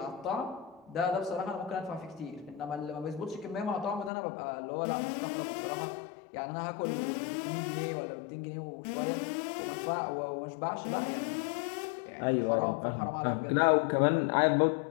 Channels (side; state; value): right; drops out; at 4.1 s